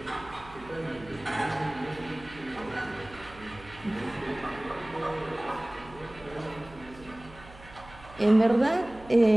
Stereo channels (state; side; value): noise; right; hum, 20 dB below the sound